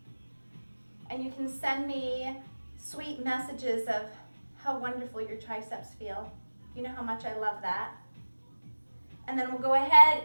And you can send me sweet messages of how wonderful your triceps feel. You know how much I love that. And then we'll go ahead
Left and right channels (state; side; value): inverted; both; correlation -1.00